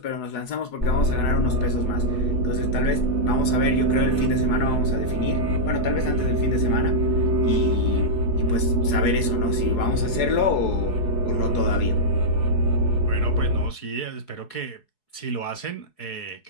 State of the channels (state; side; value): late; right; 4.7 ms